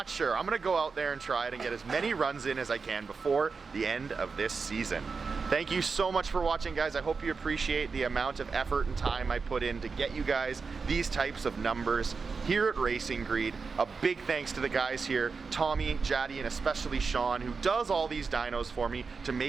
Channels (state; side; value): quieter; left; 4.9 dB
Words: sure. I'm gonna go out there and try it and get as many runs in as I can before the end of this season. Thank you so much for watching, guys. I hope you appreciate the amount of effort and time I put in to get you guys these types of numbers here at Racing Greed. A big thanks to the guys here, Tommy, Jaddy, and especially Sean, who does all these dynos for me to